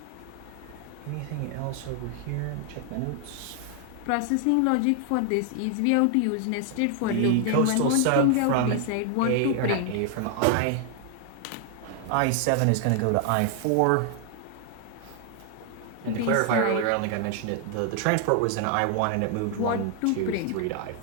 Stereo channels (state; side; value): different; both; correlation 0.00